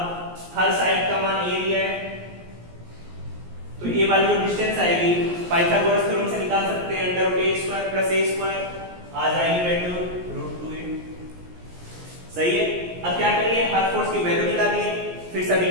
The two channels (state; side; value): late; left; 17 ms